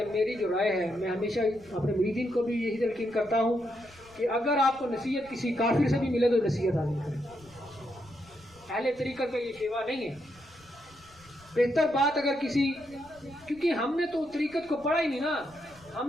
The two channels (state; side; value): noise; left; rumble, 26 dB below the sound